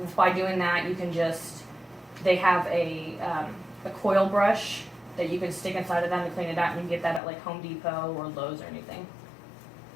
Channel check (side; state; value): right; drops out; at 7.2 s